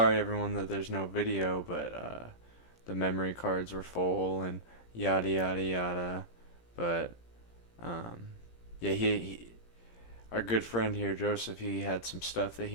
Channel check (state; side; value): late; right; 17 ms